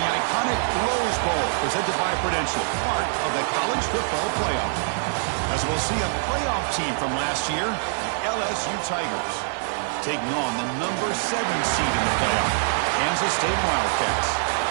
the iconic Rose Bowl, presented by Prudential, part of the college football playoff. As we'll see a playoff team from last year, the LSU Tigers, taking on the number 7 seed in the playoff, Kansas State Wildcats.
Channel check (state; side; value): silent; left; digital silence